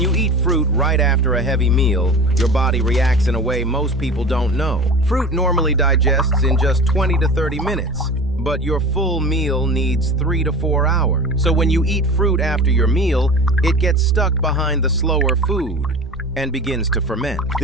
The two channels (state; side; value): normal; both; correlation 0.35